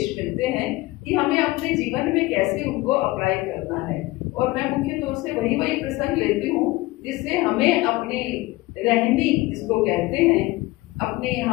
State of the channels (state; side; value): quieter; right; 20.0 dB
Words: मिलते हैं कि हमें अपने जीवन में कैसे उनको अप्लाई करना है। और मैं मुख्य तौर से वही प्रसंग लेती हूँ जिससे हमें अपनी रहनी, जिसको कहते हैं अपने,